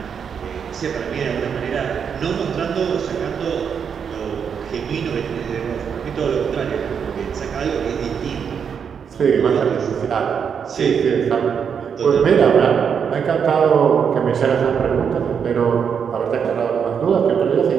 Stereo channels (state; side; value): quieter; left; 7.1 dB